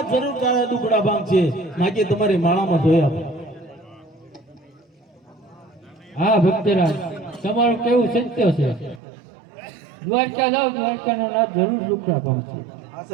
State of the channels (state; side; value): drops out; left; at 9.0 s